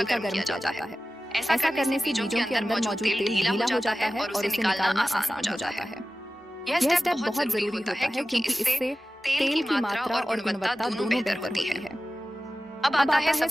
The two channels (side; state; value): both; normal; correlation 0.95